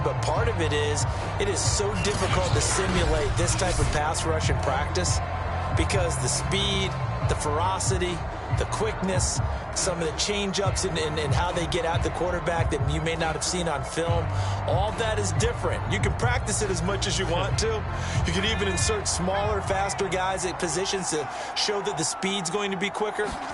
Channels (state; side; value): identical; both; correlation 1.00